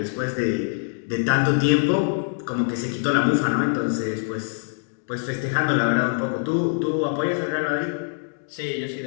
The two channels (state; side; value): silent; right; digital silence